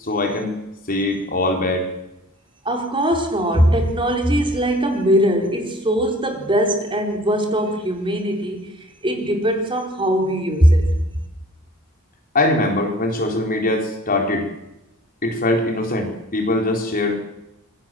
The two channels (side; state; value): both; normal; correlation 0.49